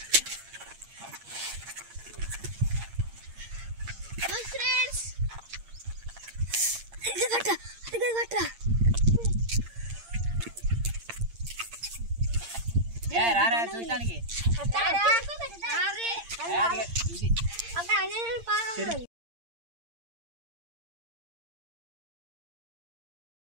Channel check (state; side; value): late; left; 8.7 ms